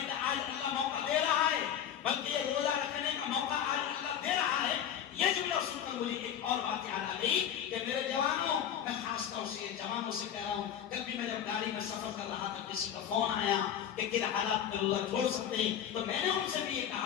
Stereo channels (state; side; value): quieter; right; 9.5 dB